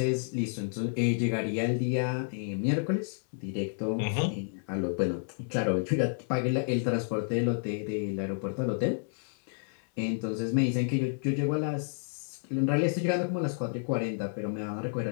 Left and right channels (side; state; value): right; silent; 58 dB below the other